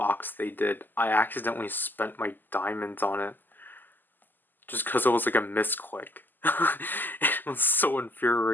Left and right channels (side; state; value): right; late; 0.089 ms